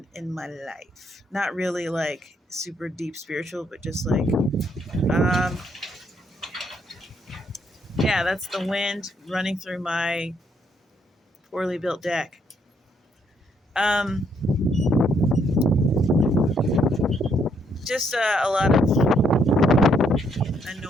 in my life. Not really like super deep spiritual, but just like, um, yeah, that's the wind running through my poorly built deck. Um, just a lot of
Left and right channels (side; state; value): both; normal; correlation 0.72